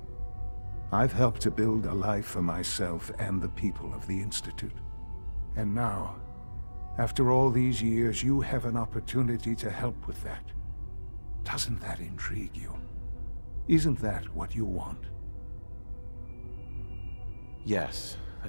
I've helped to build a life for myself and the people of the Institute. And now, after all these years, you have an opportunity to help with that. Doesn't that intrigue you? Isn't that what you want? Yes,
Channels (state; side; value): inverted; both; correlation -1.00